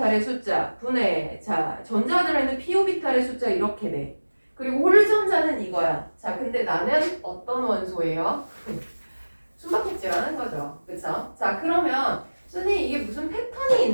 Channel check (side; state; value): both; inverted; correlation -1.00